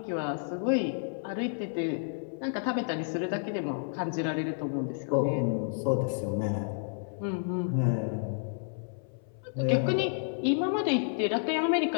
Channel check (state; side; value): silent; right; 57 dB below the other